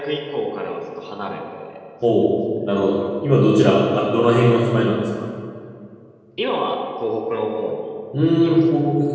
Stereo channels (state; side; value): identical; both; correlation 1.00